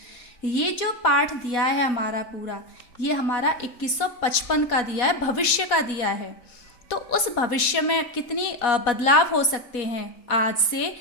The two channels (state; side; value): late; right; 4.1 ms